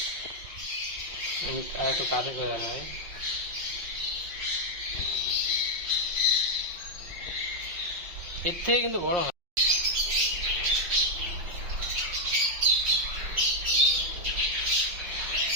আর একটু কাছে করে দেখায়। এর থেকে কিন্তু বড় হয়।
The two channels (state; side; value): late; left; 5.6 ms